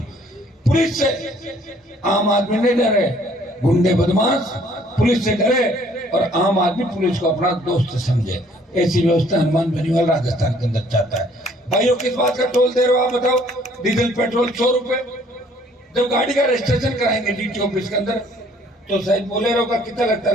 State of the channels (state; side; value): normal; both; correlation 0.60